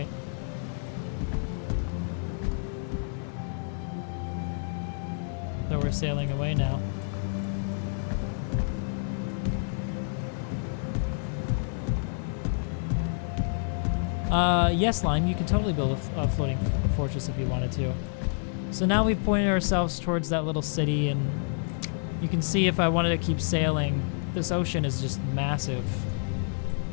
So we're sailing away now. Yes, Lime, you could totally build a floating fortress if you wanted to. So now we've pointed ourselves towards that little city, and you can see if I wanted to keep sailing, this ocean is just massive.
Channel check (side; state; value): right; silent; digital silence